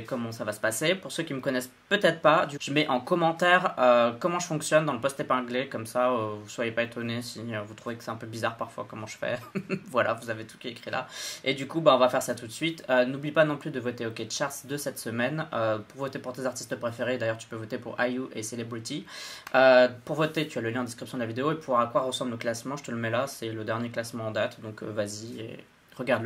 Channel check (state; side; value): identical; both; correlation 1.00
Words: comment ça va se passer. Pour ceux qui me connaissent peut-être pas, je mets en commentaire comment je fonctionne dans le post épinglé. Comme ça, vous soyez pas étonnés si vous trouvez que c'est un peu bizarre parfois comment je fais. Voilà, vous avez tout qui est écrit là. Et du coup, on va faire ça tout de suite. N'oublie pas non plus de voter OK Charts de cette semaine. Pour voter pour tes artistes préférés, d'ailleurs, tu peux voter pour IU et Celebrity. Pour voter, tu as le lien en description de la vidéo. Et pour à quoi ressemble le classement, je te le mets là. C'est le dernier classement en date. Donc vas-y. Et